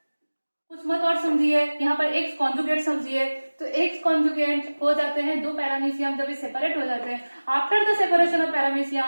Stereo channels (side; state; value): both; inverted; correlation -1.00